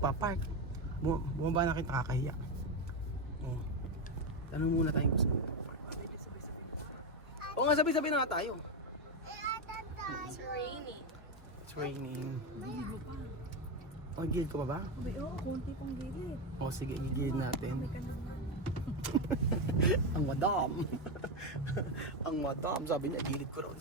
Bumaba na kayo, nakakahiya. Oh. Tanong muna tayo kung saan magpa-park. Oo nga, sabi-sabi na nga tayo. It's raining. It's raining. Gilid mo pa. Oh, gilid ko pa ba? Abay, konti pang gilid. O sige, gigilid natin. May ka naman. Ang madam. Ang madam, sabi niya, gilid ko raw.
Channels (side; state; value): both; normal; correlation 0.11